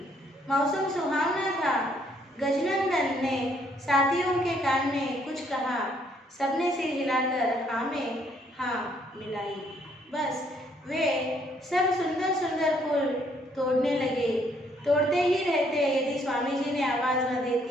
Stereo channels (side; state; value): both; normal; correlation 0.68